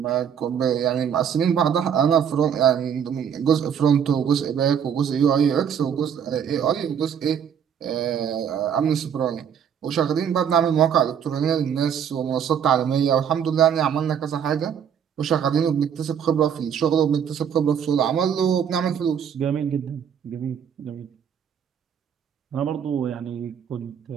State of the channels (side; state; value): left; quieter; 8.2 dB